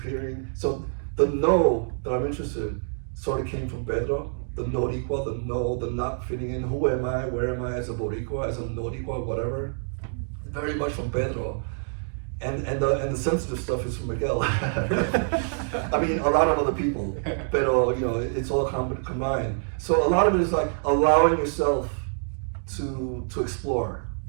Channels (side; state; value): left; silent; digital silence